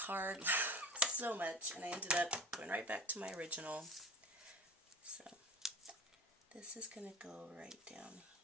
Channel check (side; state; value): both; normal; correlation 0.38